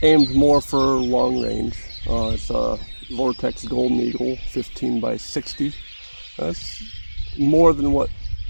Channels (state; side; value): inverted; both; correlation -1.00